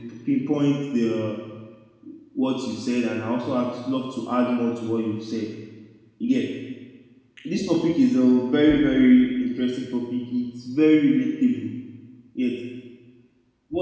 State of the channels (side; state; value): both; identical; correlation 1.00